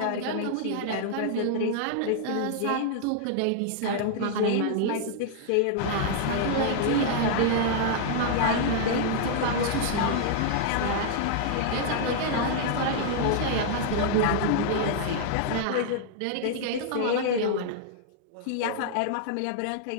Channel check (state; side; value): different; both; correlation -0.01